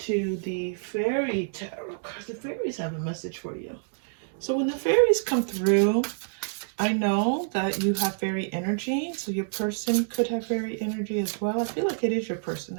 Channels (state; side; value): silent; left; digital silence